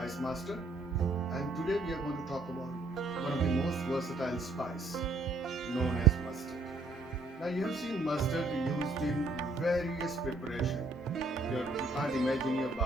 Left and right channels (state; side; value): quieter; left; 3.1 dB